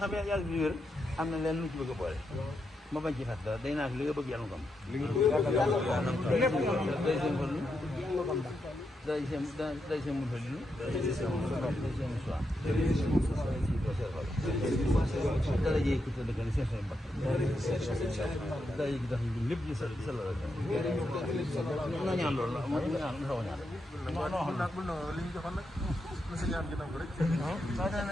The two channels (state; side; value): normal; both; correlation 0.84